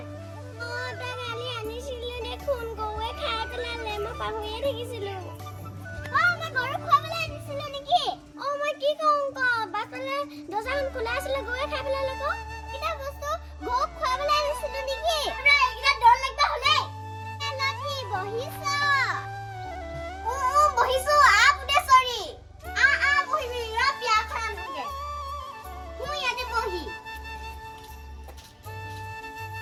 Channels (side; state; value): both; identical; correlation 1.00